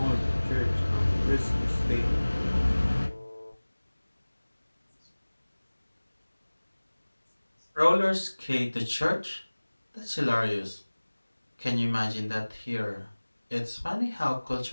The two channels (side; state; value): both; inverted; correlation -1.00